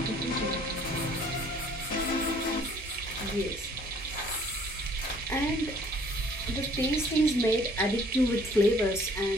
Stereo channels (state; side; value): normal; both; correlation 0.58